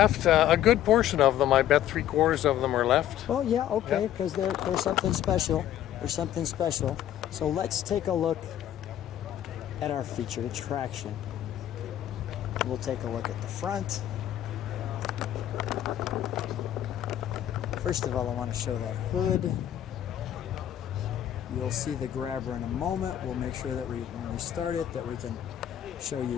a good portion of them. I bet 3/4 of them are left. Well, yeah, okay, because they're something special. There's something special. So let's take a look at our featured attraction. We'll take a look at the front. First of all, I want to show that hood. You'll see the grabber in a moment. We'll make sure that when we start it, that we can show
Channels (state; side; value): quieter; right; 11.6 dB